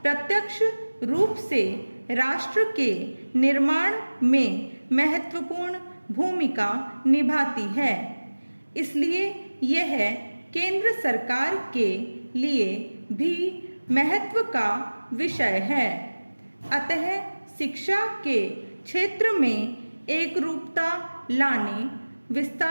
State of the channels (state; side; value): inverted; both; correlation -1.00